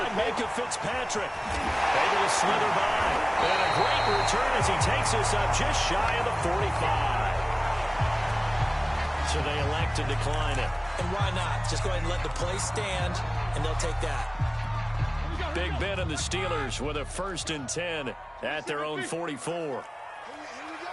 Micah Fitzpatrick. Able to slither by. And a great return as he takes us up just shy of the 45. So they elect to decline it. And why not? Just go ahead and let the play stand, and they'll take that. Big Ben and the Steelers with a 1st and 10 at their own 44.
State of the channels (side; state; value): both; identical; correlation 1.00